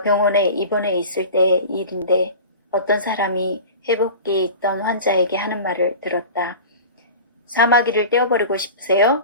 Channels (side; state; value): both; inverted; correlation -0.36